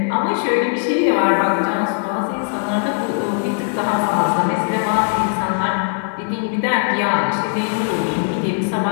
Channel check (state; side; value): silent; right; 66 dB below the other